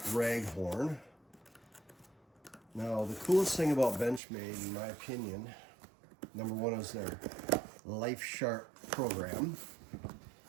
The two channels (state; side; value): drops out; left; at 4.2 s